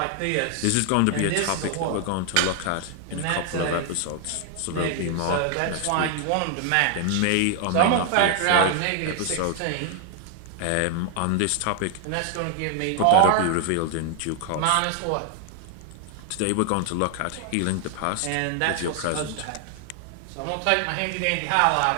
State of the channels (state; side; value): different; both; correlation 0.00